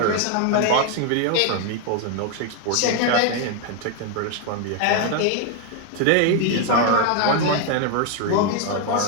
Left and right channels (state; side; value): different; both; correlation 0.01